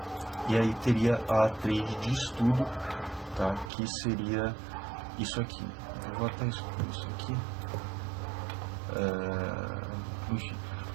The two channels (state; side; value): drops out; left; at 3.7 s